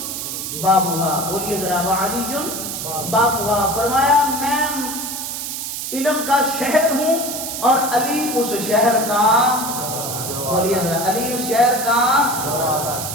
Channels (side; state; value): right; noise; hiss, 5 dB below the sound